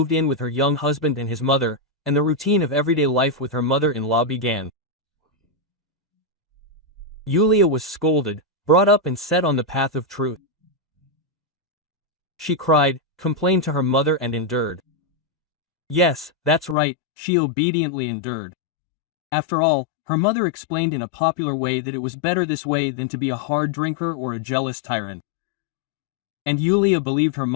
in with her young husband and his mother, and the routine of everyday life with her mother-in-law began. Yulia was scolded, brought up and set on the path of truth. She cried, complained to her mother and endured. Yes, that's right, she obediently endured. After all, her mother explained in a popular way that it was better this way than to be a hard drinker or a jealous tyrant. And Yulia believed her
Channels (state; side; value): drops out; right; at 16.8 s